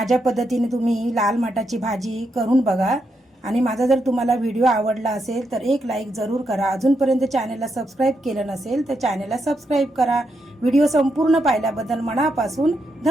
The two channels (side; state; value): both; normal; correlation 0.82